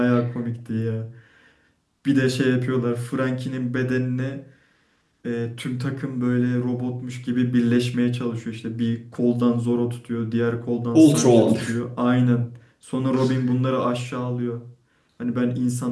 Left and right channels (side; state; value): both; identical; correlation 1.00